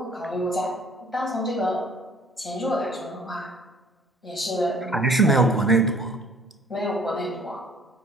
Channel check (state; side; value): normal; both; correlation 0.55